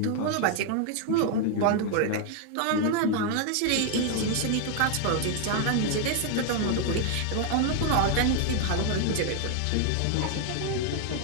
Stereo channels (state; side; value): different; both; correlation 0.00